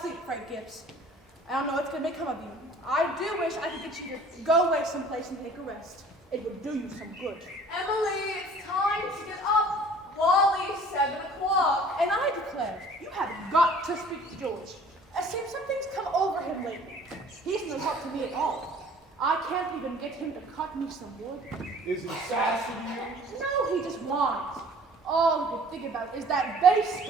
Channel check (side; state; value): both; normal; correlation 0.51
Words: sleep, Frank Gibbs. I don't know what's going to become of you. I do wish I could get you to go away someplace and take a rest. It would do you some good. Emily, it's time to get up. Wally's 7 o'clock. And I declare, you have got to speak to George. It seems something's come over him lately. He's no help to me at all. I can't even get him to cut me some wood. Is he sassy to you? No, he just whines. All he can think about is that